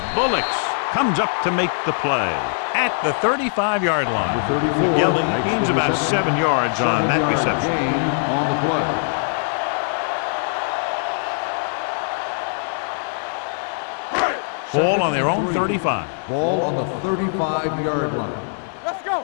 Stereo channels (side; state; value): right; silent; 56 dB below the other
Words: Bullocks comes up to make the play at the 35-yard line. Yelling gains about 7 yards on that reception. Gain on the play. Ball on their own 35. Ball on the 35-yard line. Let's